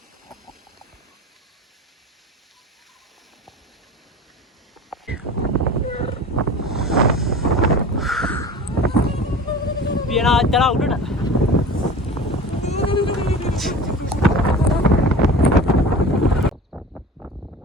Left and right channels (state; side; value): normal; both; correlation 0.37